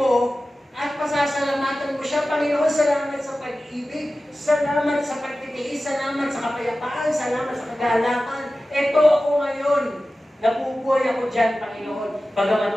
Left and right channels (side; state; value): both; normal; correlation 0.95